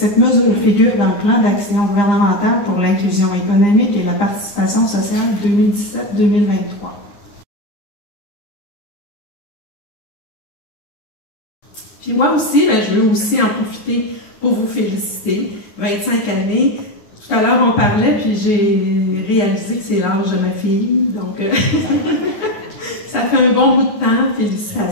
figure dans le plan d'action gouvernemental pour l'inclusion économique et la participation sociale 2017-2023. Puis moi aussi, je veux aussi en profiter pour vous féliciter. 25 années. Tout à l'heure, on parlait, puis j'ai réalisé que c'est l'âge de ma fille. Donc, ça fait un bon bout de temps.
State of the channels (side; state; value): right; late; 9.2 ms